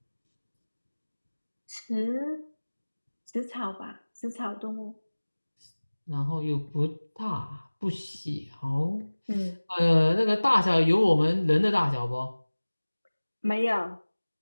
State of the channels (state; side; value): inverted; both; correlation -1.00